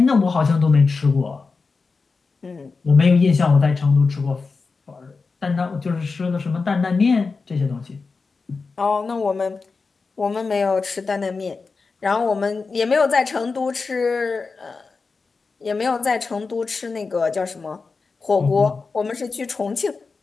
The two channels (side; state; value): right; quieter; 4.4 dB